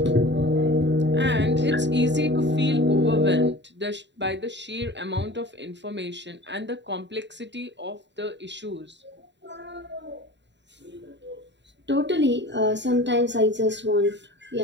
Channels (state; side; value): late; left; 0.52 ms